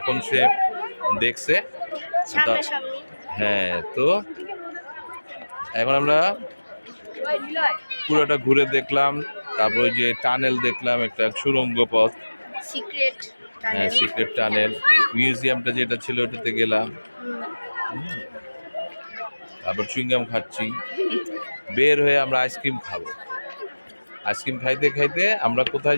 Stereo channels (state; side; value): inverted; both; correlation -1.00